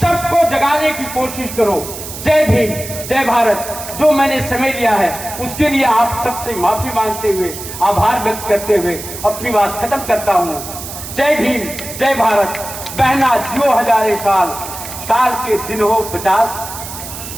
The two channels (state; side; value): noise; right; hiss, 10 dB below the sound